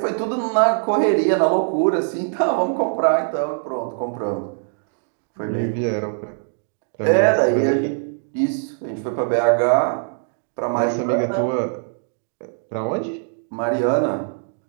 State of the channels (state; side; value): silent; left; digital silence